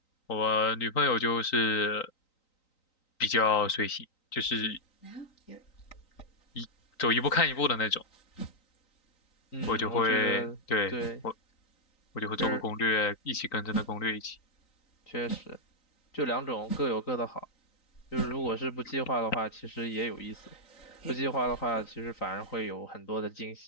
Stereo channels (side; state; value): right; late; 3.9 ms